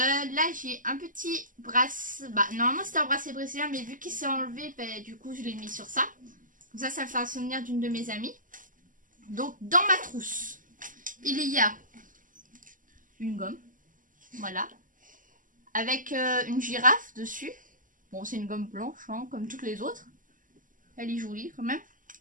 j'ai un petit bracelet, normalement c'était un bracelet brésilien mais vu qu'il s'est enlevé, du coup je l'ai mis sur ça. Comme ça me fait un souvenir d'une de mes amies. Donc dans ma trousse, il y a une gomme, voilà, avec une girafe dessus. Bon c'est une gomme blanche hein, comme toutes les autres. Elle est jolie quand même.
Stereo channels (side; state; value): left; late; 0.38 ms